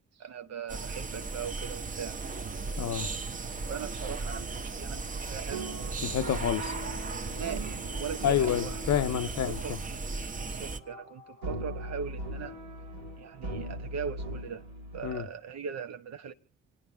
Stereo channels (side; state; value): both; normal; correlation 0.01